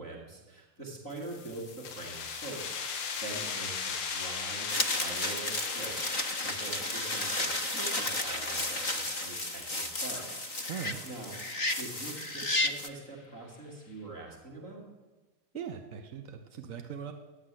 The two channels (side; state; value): right; late; 3.9 ms